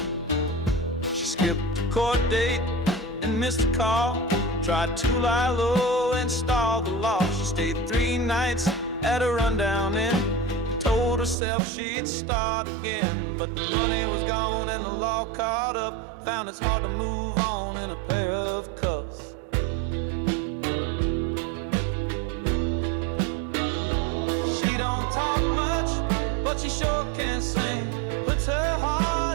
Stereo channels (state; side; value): drops out; left; at 11.4 s